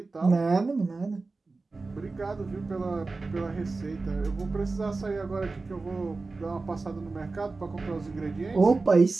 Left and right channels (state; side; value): quieter; left; 3.7 dB